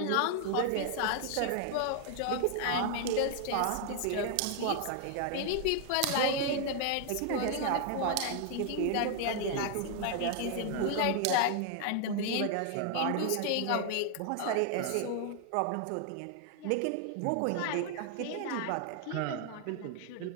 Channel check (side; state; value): both; different; correlation 0.00